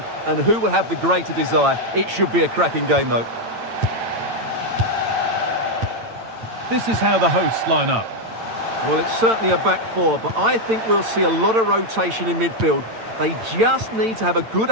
and who will have the greater desire? It should be a cracking game, though. This is how the hosts line up. Well, it's certainly a back four, but I think we'll see a lot of rotation in midfield. They just need to have a good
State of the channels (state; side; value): late; left; 8.9 ms